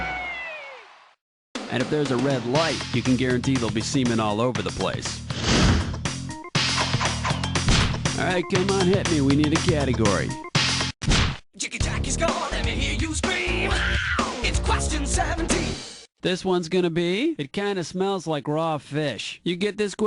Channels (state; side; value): identical; both; correlation 1.00